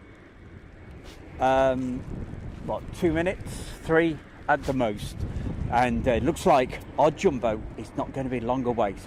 2 minutes, 3 at the most, and it looks like our jumbo is not going to be long away,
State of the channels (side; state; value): both; identical; correlation 1.00